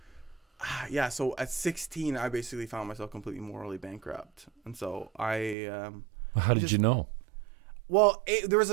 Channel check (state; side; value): drops out; left; at 5.6 s